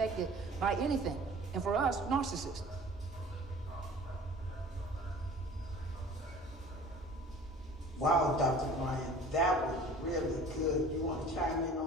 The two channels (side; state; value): both; normal; correlation 0.45